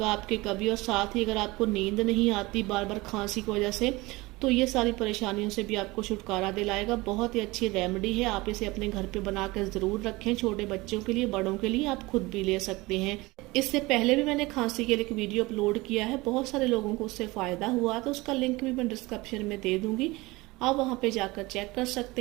आपके कभी। और साथ ही अगर आपको नींद नहीं आती बार बार खांसी की वजह से तो ये सारी परेशानियों से भी आपको छुटकारा दिलाएगा। बहुत ही अच्छी रेमेडी है, आप इसे अपने घर पे बनाकर ज़रूर रखें। छोटे बच्चों के लिए, बड़ों के लिए आप खुद भी ले सकते हैं। इससे पहले भी मैंने खांसी के लिए एक वीडियो अपलोड किया है, बहुत सारे लोगों को उससे फ़ायदा हुआ, तो उसका लिंक भी मैं डिस्क्रिप्शन में दे दूँगी, आप वहाँ पे जाकर चेक कर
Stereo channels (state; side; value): quieter; left; 21.9 dB